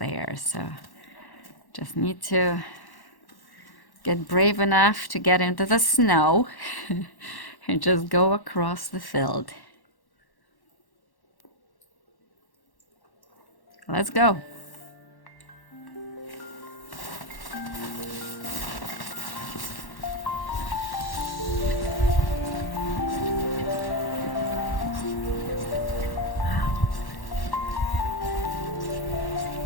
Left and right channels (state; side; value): late; right; 1.1 ms